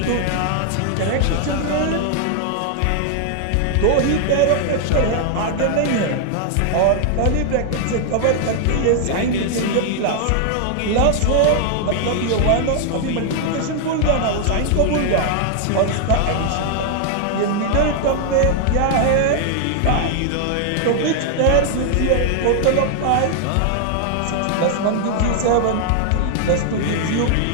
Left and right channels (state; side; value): different; both; correlation 0.00